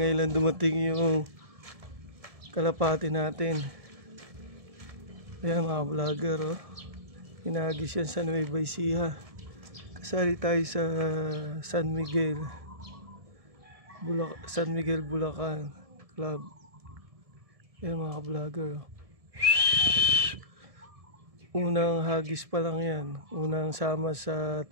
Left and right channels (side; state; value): left; late; 1.7 ms